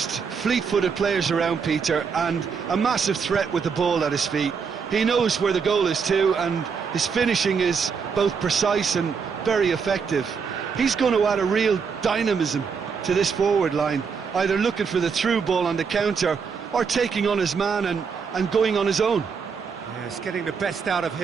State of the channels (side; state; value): left; quieter; 5.9 dB